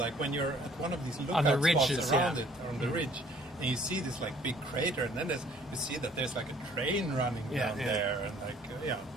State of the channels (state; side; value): normal; both; correlation 0.58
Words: when you're at one of these lookout On the ridges, spots around yeah. it, on the ridge, and you see this like big crater, and then you see that there's like a train running down there, and like